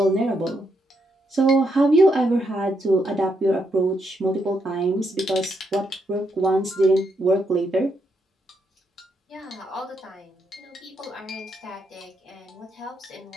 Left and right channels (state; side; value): normal; both; correlation 0.79